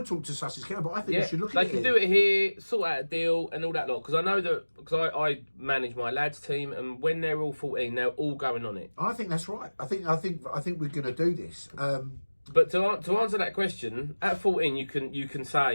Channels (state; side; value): inverted; both; correlation -1.00